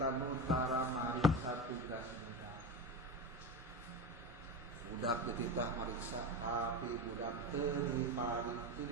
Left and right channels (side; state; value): both; normal; correlation 0.22